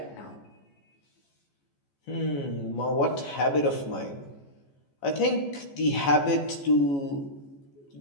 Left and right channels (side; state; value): right; late; 14 ms